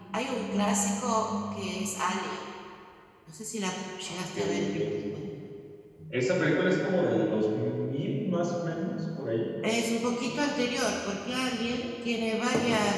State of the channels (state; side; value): identical; both; correlation 1.00